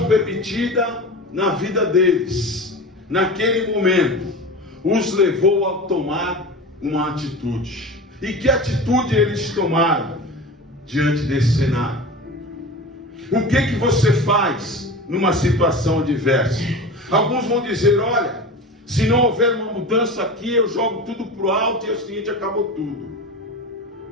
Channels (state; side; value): normal; both; correlation 0.31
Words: permitida na vida deles, naquele momento, os levou a tomar uma atitude. E que atitude eles tomaram diante desse cenário? O que você faz numa situação adversa? Alguns vão dizer: olha, se não houver uma mudança aqui, eu jogo tudo para o alto e é o seguinte, acabou tudo.